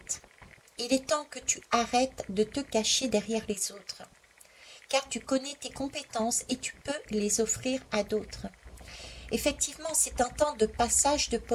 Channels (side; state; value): both; identical; correlation 1.00